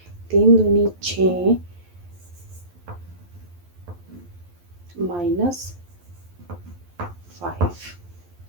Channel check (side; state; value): left; late; 11 ms